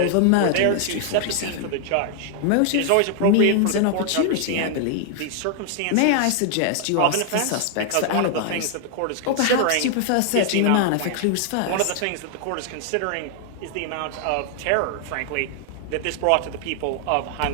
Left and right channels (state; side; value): different; both; correlation 0.00